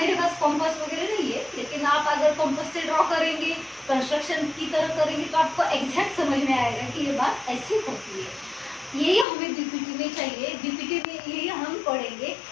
पास कॉम्पास वगैरह नहीं है, लेकिन आप अगर कॉम्पास से ड्रॉ करेंगे, कंस्ट्रक्शन की तरह करेंगे तो आपको एग्जैक्ट समझ में आएगा कि ये बात ऐसी होती है। यही हमें बीपीटी में चाहिए, बीपीटी में यही हम पढ़ेंगे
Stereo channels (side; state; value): right; drops out; at 9.2 s